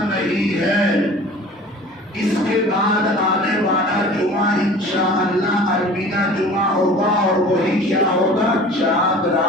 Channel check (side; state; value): both; normal; correlation 0.43